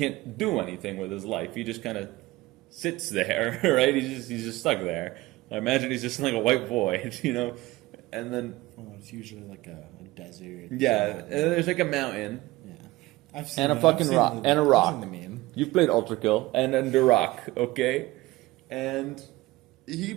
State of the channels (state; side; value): quieter; left; 19.1 dB